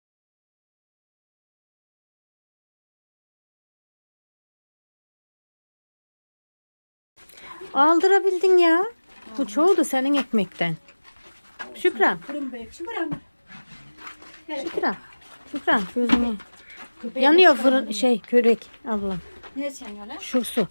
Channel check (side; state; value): both; inverted; correlation -1.00